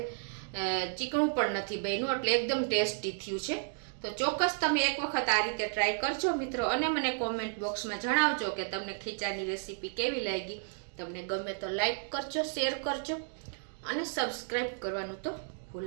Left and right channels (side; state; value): left; silent; digital silence